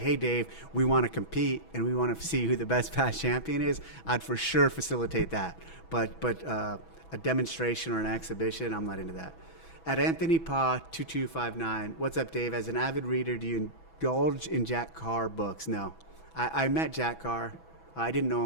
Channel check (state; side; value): late; right; 6.1 ms